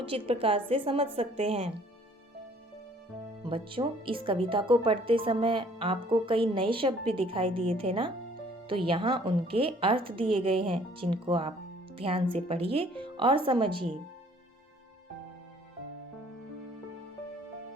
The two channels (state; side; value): normal; both; correlation 0.58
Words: प्रकार से समझ सकते हैं। बच्चों, इस कविता को पढ़ते समय आपको कई नए शब्द भी दिखाई दिए थे ना? तो यहाँ उनके अर्थ दिए गए हैं, जिनको आप ध्यान से पढ़िए और समझिए।